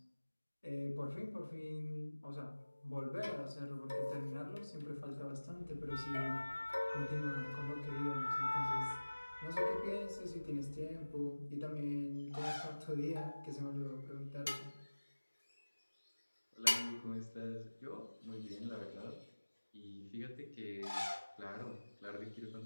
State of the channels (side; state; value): both; inverted; correlation -1.00